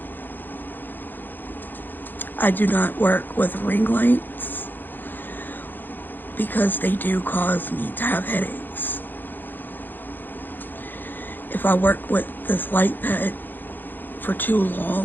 I do not work with ring lights because they do cause me to have headaches. If I work with this light pad for too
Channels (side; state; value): right; late; 0.091 ms